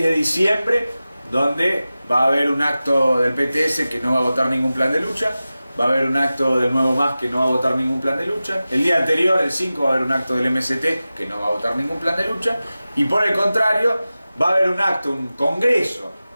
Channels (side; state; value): both; inverted; correlation -0.95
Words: de diciembre donde va a haber un acto del PTS que no va a votar ningún plan de lucha, va a haber un acto del Nuevo Más que no va a votar ningún plan de lucha, el día anterior, el 5, va a haber un acto del MST que no va a votar ningún plan de lucha, y por el contrario va a haber un acto, un congreso